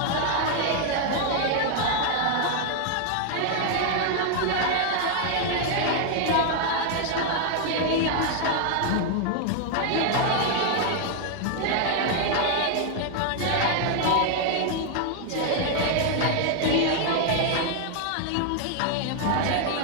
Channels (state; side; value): different; both; correlation 0.00